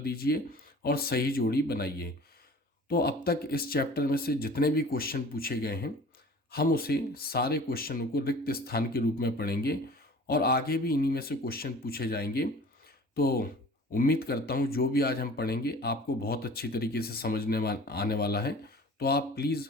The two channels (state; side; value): normal; both; correlation 0.44